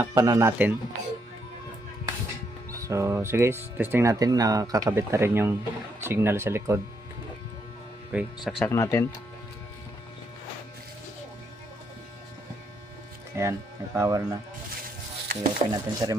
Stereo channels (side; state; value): both; normal; correlation 0.76